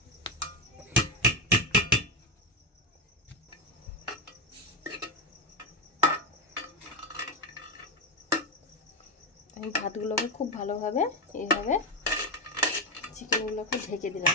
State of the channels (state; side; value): normal; both; correlation 0.10